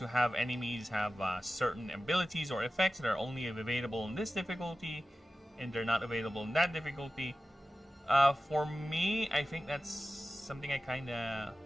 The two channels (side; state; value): both; normal; correlation 0.94